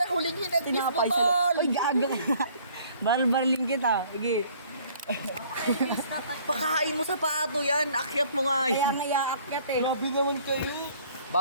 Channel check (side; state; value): both; inverted; correlation -0.57